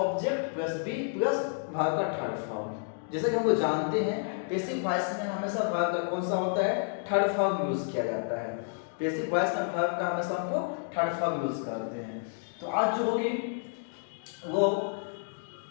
plus b plus भाग का थर्ड फॉर्म। जैसे कि हम लोग जानते हैं, बेसिक वॉइस में हमेशा भाग का कौन सा होता है? थर्ड फॉर्म यूज किया जाता है। बेसिक वॉइस में भाग का हमेशा हमको थर्ड फॉर्म यूज करते हैं। तो आज जो होगी वो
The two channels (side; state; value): right; silent; digital silence